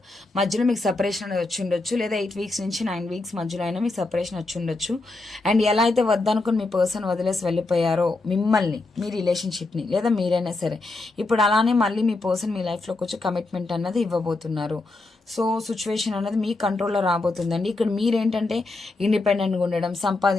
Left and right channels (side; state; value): right; quieter; 3.2 dB